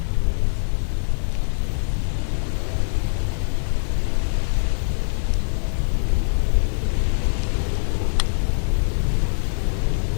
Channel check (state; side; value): silent; right; 60 dB below the other